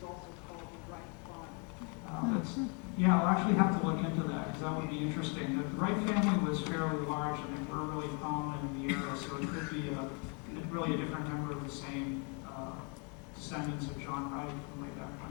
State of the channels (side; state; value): right; quieter; 35.4 dB